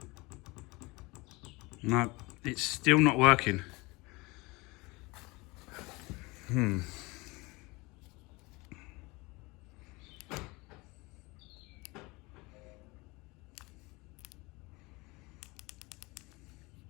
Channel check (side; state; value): right; quieter; 24.3 dB